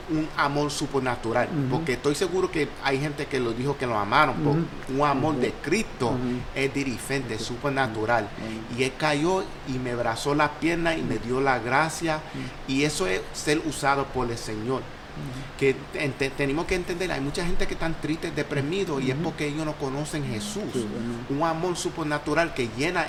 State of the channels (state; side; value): identical; both; correlation 1.00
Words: un amor supernatural. Porque estoy seguro que hay gente que lo dijo que lo amaron. Un amor de Cristo es diferente, es supernatural. Y él cayó y me abrazó la pierna y me dio la gracia. Y eso es ser usado por el Señor. Que tenemos que entender, hay mucha gente que están tristes, deprimidos, y es porque ellos no conocen Jesús. Un amor supernatural que llena